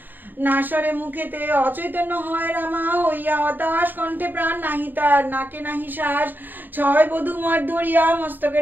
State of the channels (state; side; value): late; left; 0.090 ms